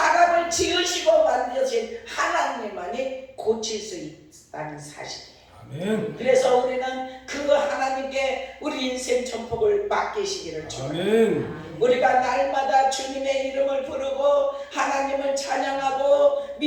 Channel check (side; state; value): both; identical; correlation 1.00